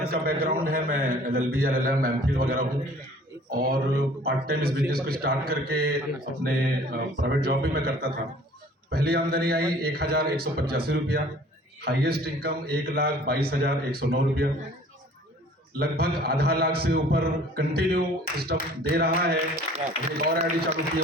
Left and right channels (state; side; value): normal; both; correlation 0.51